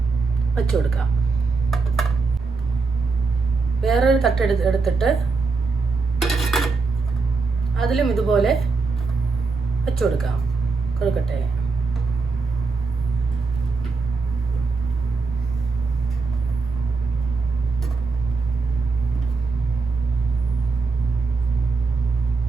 വെച്ച് കൊടുക്കാം. വേറൊരു തട്ട് എടുത്തിട്ട് അതിലും ഇതുപോലെ വെച്ച് കൊടുക്കാം കൊഴുക്കട്ടയെ.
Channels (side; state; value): left; quieter; 4.2 dB